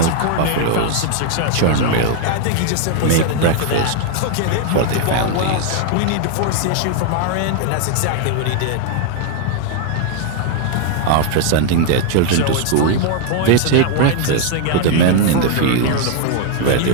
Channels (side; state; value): both; different; correlation 0.00